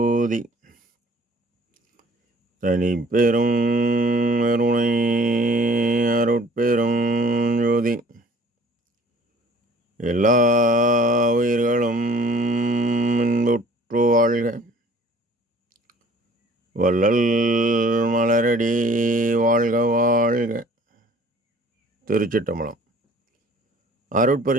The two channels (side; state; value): both; normal; correlation 0.52